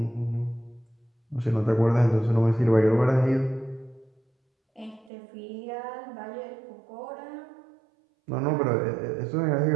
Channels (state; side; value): drops out; left; at 5.1 s